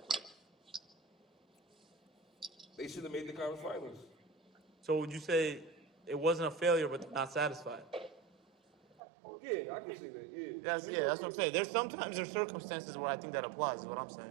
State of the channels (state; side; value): drops out; left; at 9.0 s